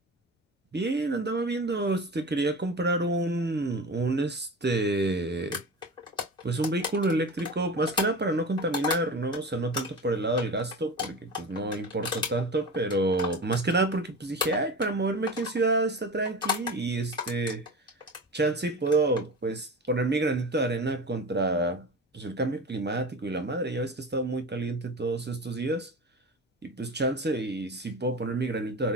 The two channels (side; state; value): both; normal; correlation 0.31